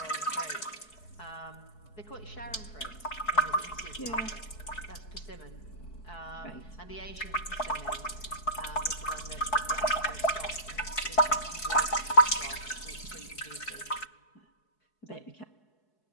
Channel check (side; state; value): right; late; 4.7 ms